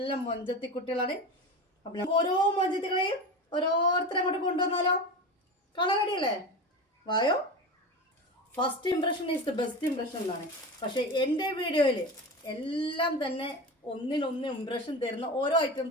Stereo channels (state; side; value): normal; both; correlation 0.27